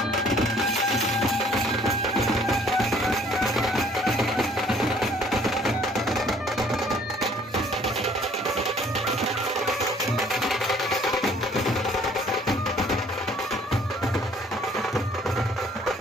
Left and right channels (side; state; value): both; normal; correlation 0.58